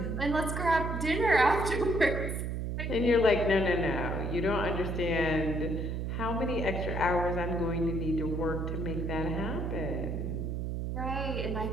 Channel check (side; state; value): right; noise; hum, 2 dB below the sound